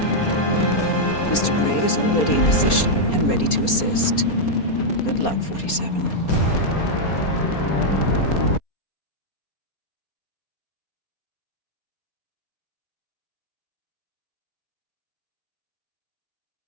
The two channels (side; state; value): right; late; 4.3 ms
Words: Mr. Gray is already in position and ready to assist. Good luck, 47.